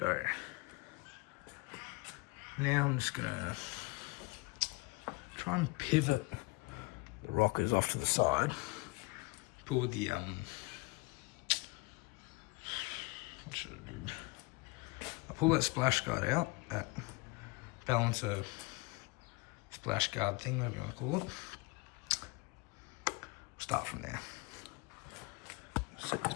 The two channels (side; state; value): right; quieter; 25.8 dB